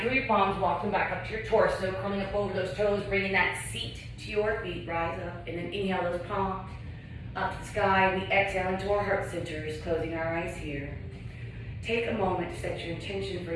through your palms, walk them back up to your torso, curling up over those toes, bringing that seat to your feet, rise up, and then inhale those palms up to the sky. We exhale into our heart centers, closing our eyes here. Take a moment to set your intention for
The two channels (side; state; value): both; identical; correlation 1.00